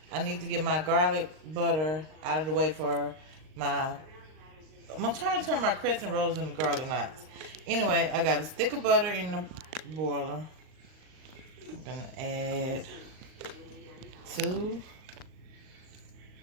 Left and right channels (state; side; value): late; left; 39 ms